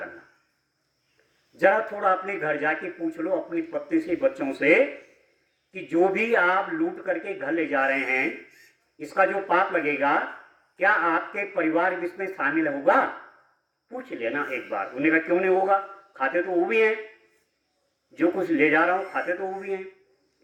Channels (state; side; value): identical; both; correlation 1.00